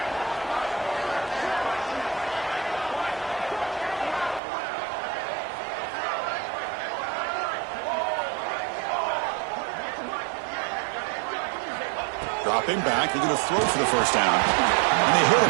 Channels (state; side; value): drops out; left; at 4.4 s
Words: Dropping back, they're going to throw for the first down. And they hit him